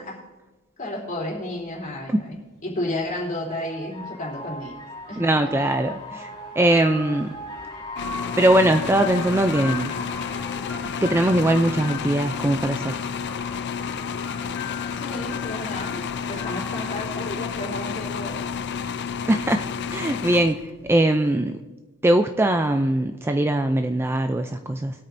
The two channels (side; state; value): both; normal; correlation 0.68